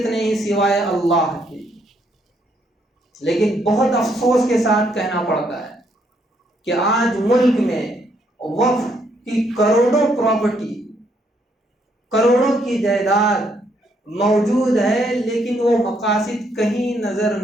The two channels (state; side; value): normal; both; correlation 0.72